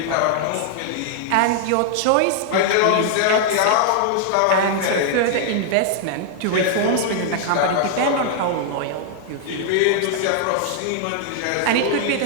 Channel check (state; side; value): different; both; correlation 0.00